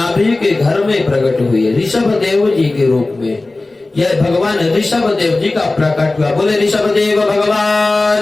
के घर में प्रकट हुए ऋषभ देव जी के रूप में। यह भगवान ऋषभ देव जी का प्रकट हुआ। बोले ऋषभ देव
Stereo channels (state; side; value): quieter; right; 3.1 dB